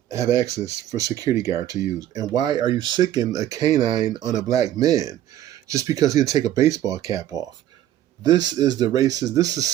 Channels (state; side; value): quieter; left; 12.3 dB